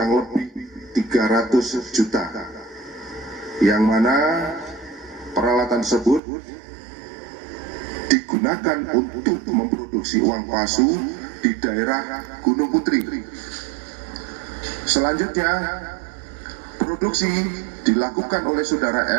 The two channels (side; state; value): left; drops out; at 6.2 s